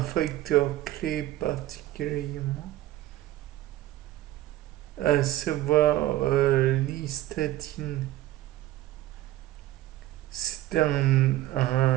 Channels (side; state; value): left; quieter; 15.0 dB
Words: clé particulièrement, à savoir l'hystatine. C'est un